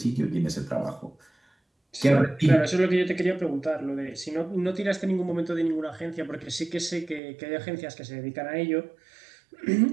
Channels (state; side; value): drops out; left; at 7.2 s